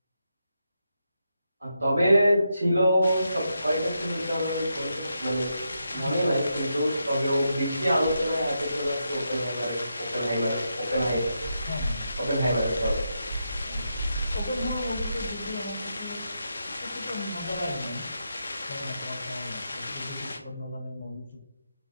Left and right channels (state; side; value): inverted; both; correlation -0.84